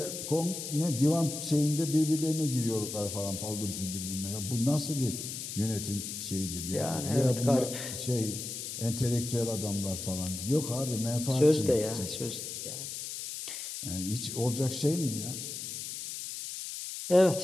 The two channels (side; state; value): left; noise; hiss, 7 dB below the sound